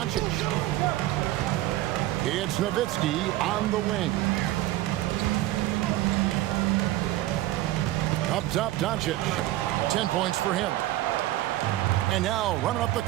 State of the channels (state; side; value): quieter; left; 15.9 dB